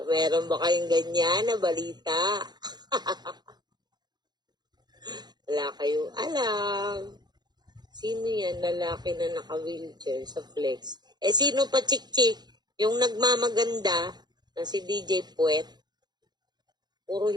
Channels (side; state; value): left; late; 0.20 ms